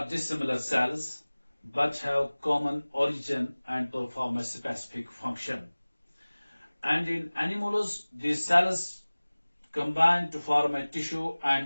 dissimilar cells but have common origin and perform a specific function. And in animals, these cells combine to form a tissue,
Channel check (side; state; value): both; inverted; correlation -1.00